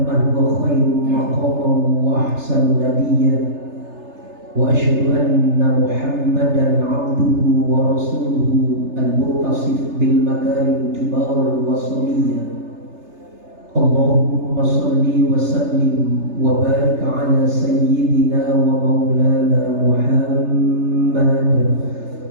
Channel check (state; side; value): late; left; 3.3 ms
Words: man huwa khairu maqaman wa ahsanu nabiyyan wa asyhadu anna Muhammadan 'abduhu wa rasuluhu al-muttasif bil makarim kibar wa samiyya. Allahumma salli wa sallim wa barik ala sayyidina wa maulana Muhammad